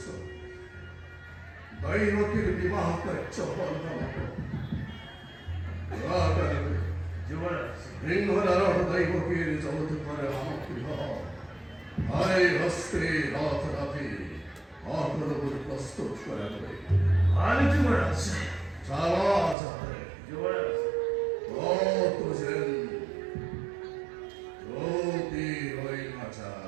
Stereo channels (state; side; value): drops out; left; at 19.6 s